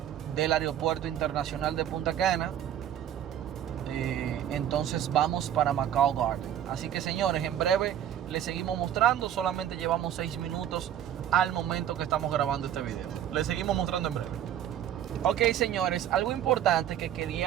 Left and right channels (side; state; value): left; quieter; 10.7 dB